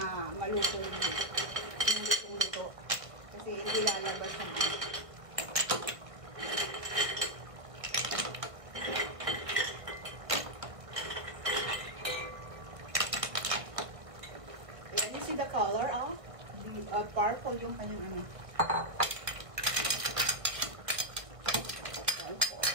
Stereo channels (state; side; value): late; left; 1.5 ms